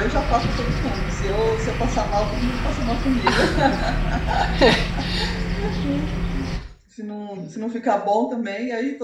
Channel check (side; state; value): both; identical; correlation 1.00